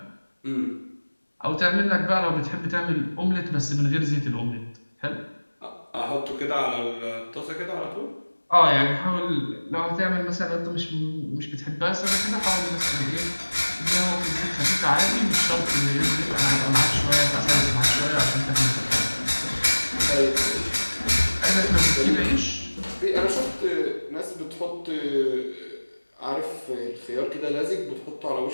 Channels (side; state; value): both; inverted; correlation -1.00